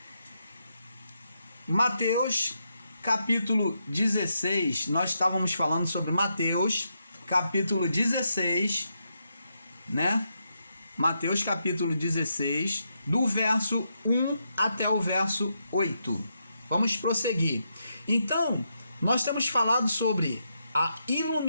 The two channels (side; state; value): both; inverted; correlation -0.82